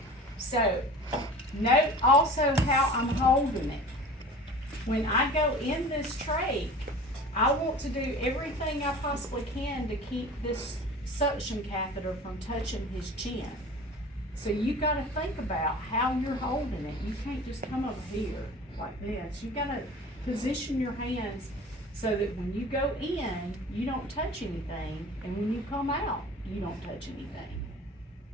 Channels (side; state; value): both; normal; correlation 0.40